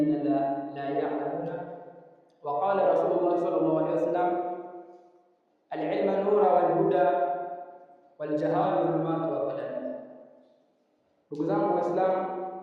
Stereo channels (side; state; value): both; identical; correlation 1.00